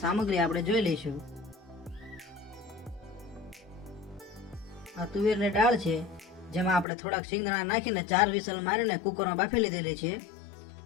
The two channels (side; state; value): right; drops out; at 6.9 s